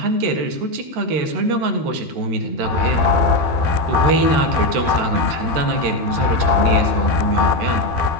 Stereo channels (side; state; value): left; late; 13 ms